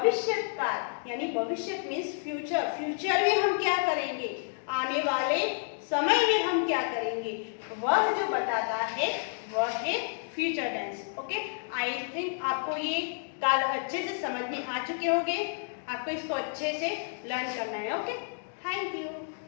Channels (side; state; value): right; silent; digital silence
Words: काल, यानी भविष्य मीन्स फ्यूचर, फ्यूचर में हम क्या करेंगे, आने वाले समय में हम क्या करेंगे, वह जो बताता है वह है future tense. Okay, I think आपको ये काल अच्छे से समझ में आ चुके होंगे। आपको इसको अच्छे से लर्न करना है। Okay, thank you.